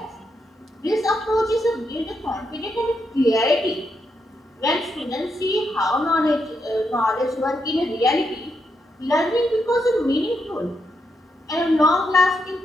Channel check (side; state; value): both; normal; correlation 0.81